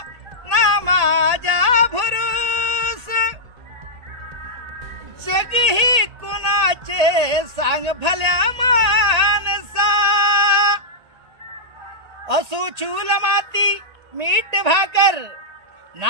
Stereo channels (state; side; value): late; left; 1.9 ms